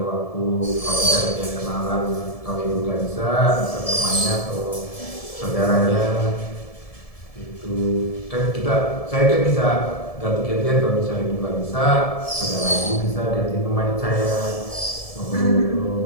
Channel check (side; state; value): right; late; 1.7 ms